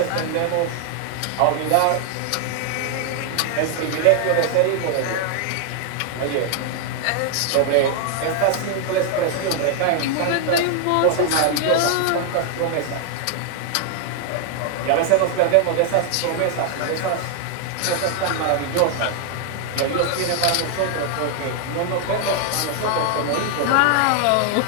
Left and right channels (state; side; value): different; both; correlation 0.00